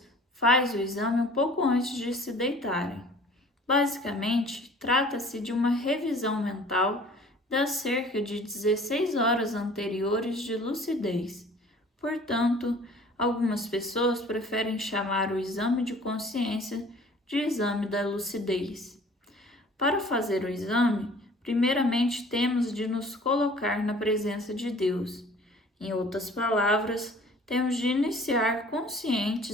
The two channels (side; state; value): both; normal; correlation 0.50